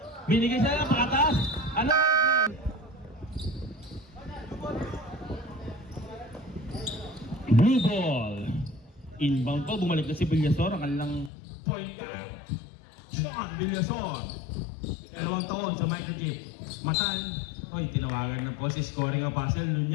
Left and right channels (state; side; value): drops out; right; at 11.3 s